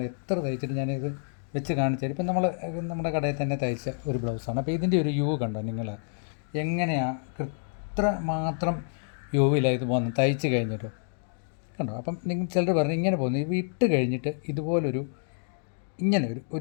എത്ര തയ്ച്ചിട്ട് ഞാനിത് വെച്ച് കാണിച്ചാൽ, ഇപ്പം നമ്മുടെ കടയിൽ തന്നെ തയ്ച്ച ഒരു ബ്ലൗസാണ്. അപ്പോൾ ഇതിൻ്റെ ഒരു യു കണ്ടോ നിങ്ങൾ? എങ്ങനെയാണ് ഇത്ര മാത്രം യുവിലാണ് ഇത് പോകുന്നത് തയ്ച്ച് കഴിഞ്ഞിട്ടോ കണ്ടോ? അപ്പം നിങ്ങൾ ചിലർ പറഞ്ഞു ഇങ്ങനെ പോകുന്നു, ഇട്ട് കഴിഞ്ഞിട്ട് ഇതുപോലൊരു ഇങ്ങനെ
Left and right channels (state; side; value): silent; right; digital silence